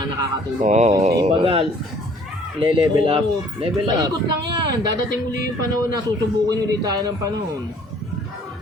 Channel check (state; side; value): normal; both; correlation 0.57